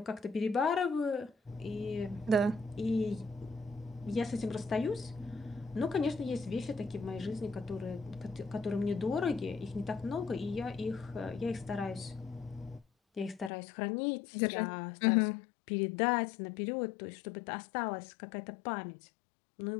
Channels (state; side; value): drops out; right; at 13.5 s